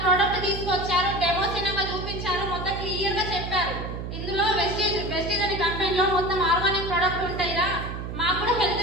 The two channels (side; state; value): right; noise; hum, 6 dB below the sound